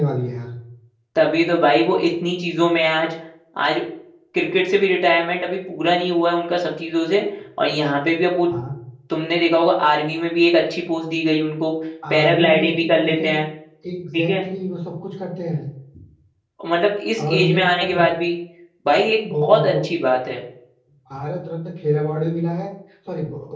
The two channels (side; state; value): both; identical; correlation 1.00